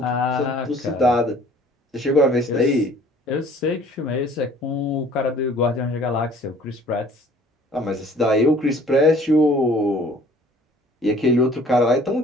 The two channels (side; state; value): both; normal; correlation 0.53